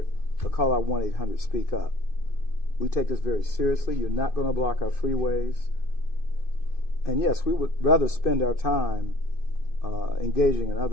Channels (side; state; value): right; late; 2.5 ms